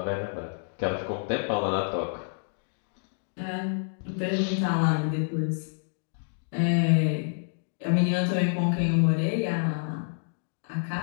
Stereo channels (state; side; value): silent; right; digital silence